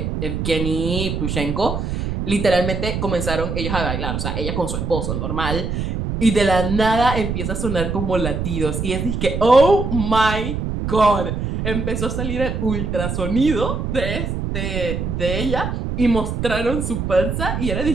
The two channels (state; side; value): noise; right; rumble, 3 dB below the sound